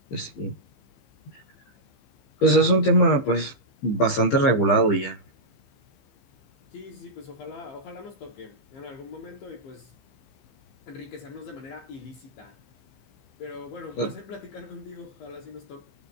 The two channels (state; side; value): late; right; 15 ms